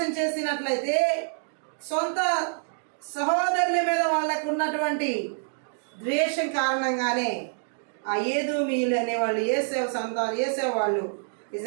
చేసినట్లయితే సొంత సహోదరుల మీద వాళ్ళకు ఉన్నటువంటి ద్వేషం కారణంగానే ఆ ఏదోమీయులు అనేవాళ్ళు ఏసేవ వాళ్ళు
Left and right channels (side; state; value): left; silent; digital silence